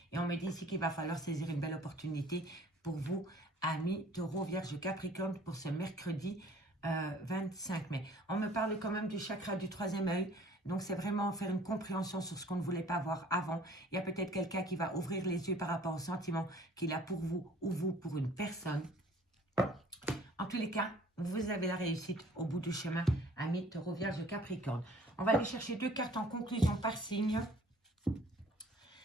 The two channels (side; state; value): both; normal; correlation 0.53